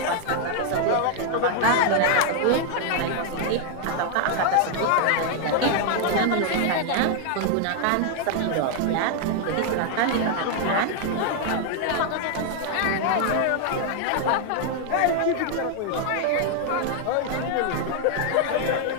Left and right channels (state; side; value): different; both; correlation 0.00